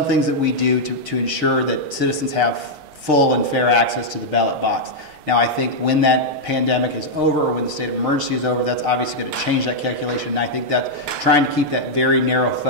that we do to ensure that citizens have full and fair access to the ballot box. Now, I think when that pandemic is over or when the state of emergency is over, that's obviously going to change that calculation. And I think that trying to keep that very narrow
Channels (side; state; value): left; late; 6.6 ms